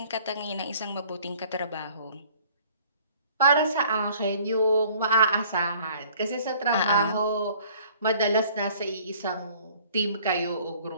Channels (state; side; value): inverted; both; correlation -0.56